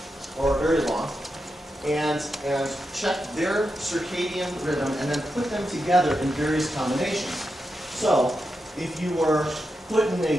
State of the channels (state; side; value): normal; both; correlation 0.87